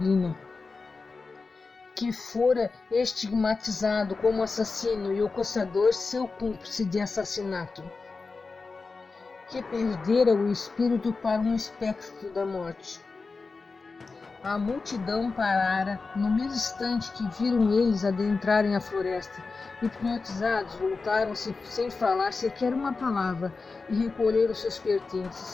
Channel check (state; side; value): quieter; right; 4.2 dB